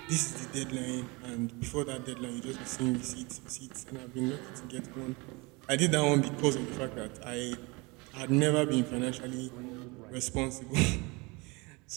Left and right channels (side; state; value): left; quieter; 26.6 dB